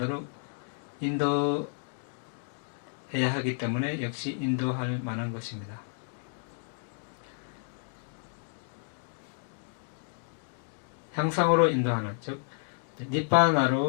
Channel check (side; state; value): right; silent; 57 dB below the other